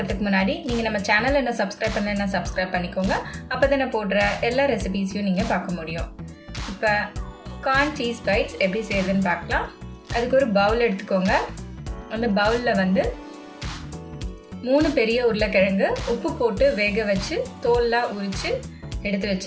முன்னாடி நீங்கள் நம்ம சேனலை என்ன சப்ஸ்கிரைப் பண்ணலைன்னா சப்ஸ்கிரைப் பண்ணிக்கோங்க. அப்போ தான் நான் போடுற எல்லா ரெசிபீஸையும் நீங்கள் பார்க்க முடியும். இப்போ கார்ன் சீஸ் பைட்ஸ் எப்படி செய்யுதுன்னு பார்க்கலாம். அதுக்கு ஒரு பவுல் எடுத்துக்கோங்க. அந்த பவுலில் வந்து 3 பெரிய உருளைக்கிழங்கு உப்பு போட்டு வேக வச்சு தோல்லாம் உரித்து எடுத்து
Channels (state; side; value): identical; both; correlation 1.00